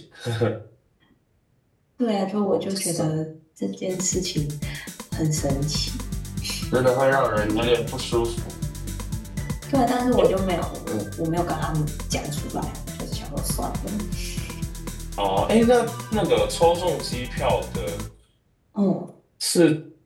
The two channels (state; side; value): identical; both; correlation 1.00